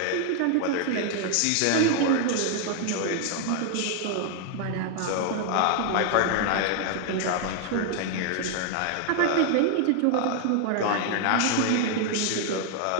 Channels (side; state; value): both; different; correlation 0.00